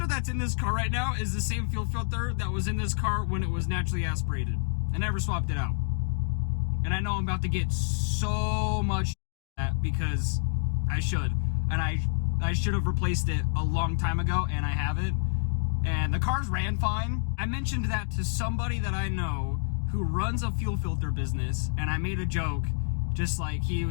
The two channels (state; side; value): silent; right; digital silence